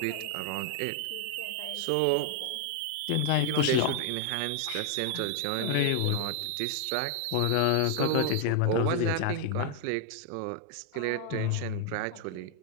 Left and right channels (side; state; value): both; different; correlation 0.00